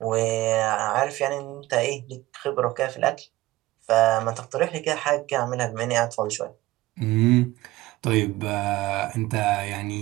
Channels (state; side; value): quieter; left; 18.0 dB